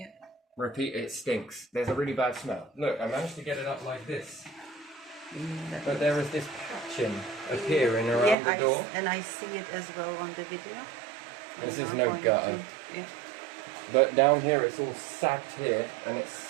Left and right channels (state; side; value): drops out; left; at 8.3 s